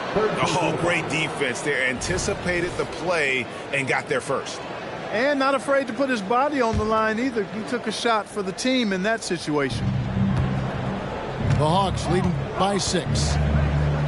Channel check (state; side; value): identical; both; correlation 1.00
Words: Oh, great defense there. Anticipated the play and got there first. And not afraid to put his body on the line either. He took a shot for the team in that situation. The Hawks leading by 6.